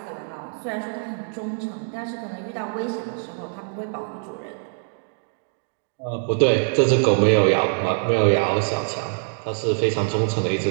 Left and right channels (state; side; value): silent; left; 63 dB below the other